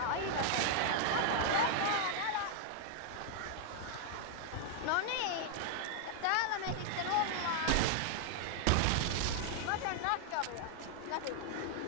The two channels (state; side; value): different; both; correlation 0.00